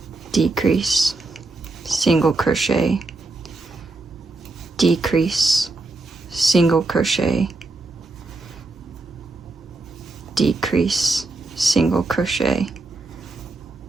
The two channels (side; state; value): left; quieter; 3.2 dB